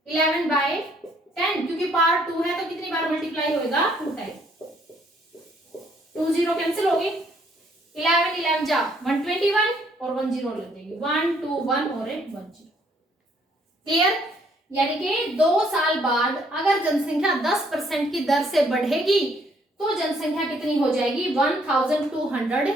11/10, क्योंकि पावर 2 है तो कितनी बार मल्टीप्लाई होएगा 2 टाइम, 2 0 कैंसिल होगी, 11 11 जा 121 और 1 0 लग जाएगी, 1 2 1 और 1 0, क्लियर। यानी कि 2 साल बाद अगर जनसंख्या 10% की दर से बढ़ेगी तो जनसंख्या कितनी हो जाएगी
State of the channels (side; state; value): both; normal; correlation 0.66